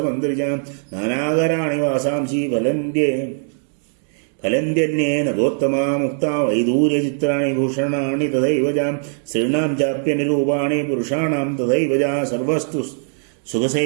नानाकराणि वासांसि फलन्त्यन्ये नगोत्तमा मुक्ता वैदूर्यचित्राणि भूषणानि तथैव जा स्त्रीणां चाप्यनिरूपाणि पुरुषाणां तथैव जा सर्वस्तु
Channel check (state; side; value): silent; left; digital silence